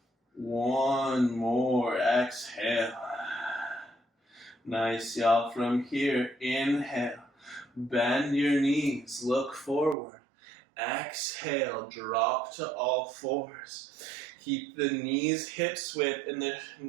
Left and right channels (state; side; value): drops out; left; at 10.0 s